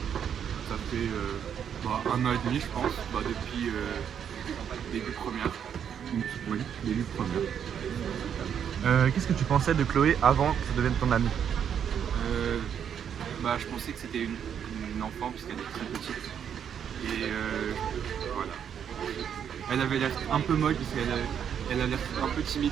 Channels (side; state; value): left; quieter; 8.4 dB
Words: Ça fait 1 an et demi je pense, depuis début première. Oui, début première. Qu'est-ce que tu pensais de Chloé avant que ça devienne ton amie? Je pensais que c'était une enfant puisqu'elle est très petite. Et voilà. Elle avait l'air un peu molle parce qu'elle a l'air un peu timide